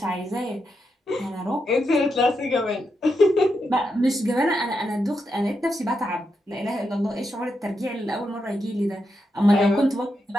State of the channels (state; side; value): normal; both; correlation 0.84